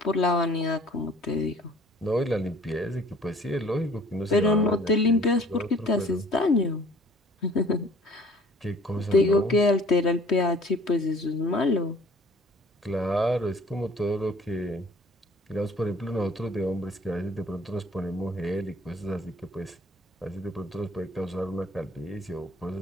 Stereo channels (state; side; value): normal; both; correlation 0.52